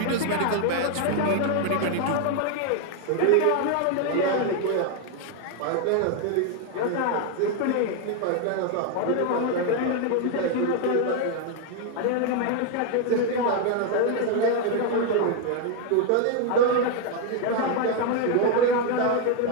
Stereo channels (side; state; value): both; different; correlation 0.01